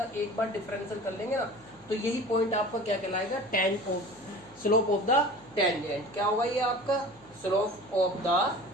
एक बार डिफरेंशियल कर लेंगे ना, तो यही पॉइंट आपका क्या कहलाएगा, स्लोप ऑफ द टेंजेंट। क्या होगा ये आपका स्लोप ऑफ द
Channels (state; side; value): noise; left; hum, 28 dB below the sound